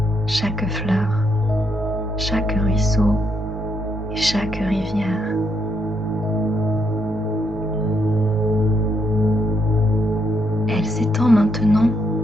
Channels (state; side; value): normal; both; correlation 0.76